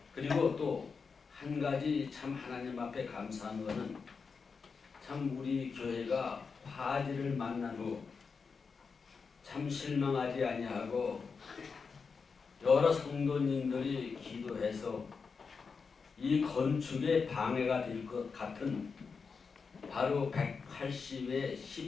그리고 또 한 가지 참 하나님 앞에 감사한 것은 참 우리 교회가 화재를 만난 후 참 실망하지 아니하고 여러 성도님들이 기도해서 이 건축에 방해가 될 것 같은 바로 180의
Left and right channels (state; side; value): quieter; right; 5.2 dB